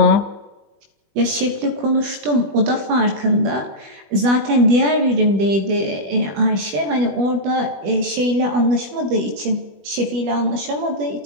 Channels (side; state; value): left; late; 20 ms